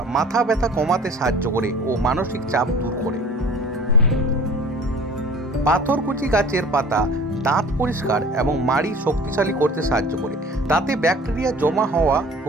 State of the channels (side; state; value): both; normal; correlation 0.45